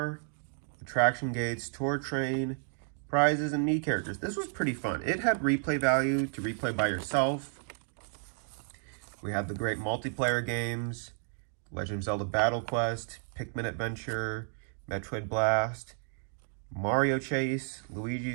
attraction gates, tour train, prizes, and Mii characters. This was pretty fun. It had replay value to replay by yourself. We had the great multiplayer games, Legend of Zelda Battle Quest, Pikmin Adventure, Metroid Blast, Mario Chase,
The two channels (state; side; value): silent; left; 57 dB below the other